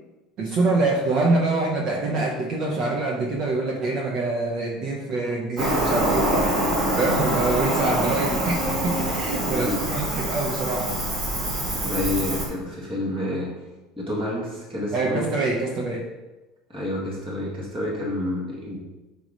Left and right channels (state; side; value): normal; both; correlation 0.46